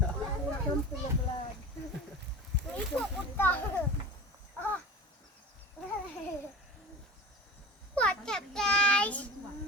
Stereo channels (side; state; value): both; normal; correlation 0.33